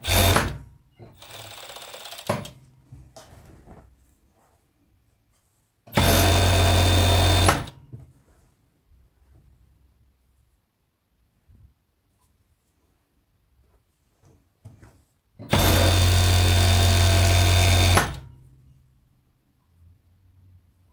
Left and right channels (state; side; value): identical; both; correlation 1.00